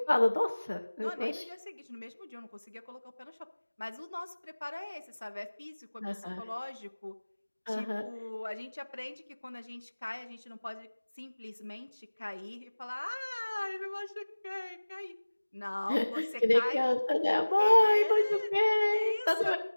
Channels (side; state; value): both; inverted; correlation -1.00